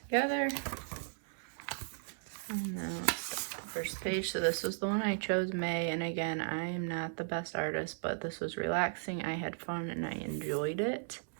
And now it's the first page. So this was the one I chose, May, and again, I am not the best artist, but this was relaxing. I had fun and I enjoyed it.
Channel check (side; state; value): left; silent; digital silence